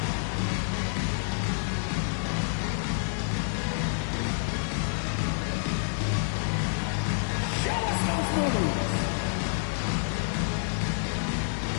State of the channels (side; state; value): right; silent; digital silence